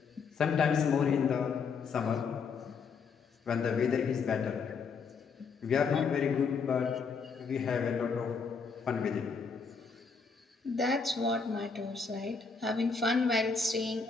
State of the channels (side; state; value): right; quieter; 5.3 dB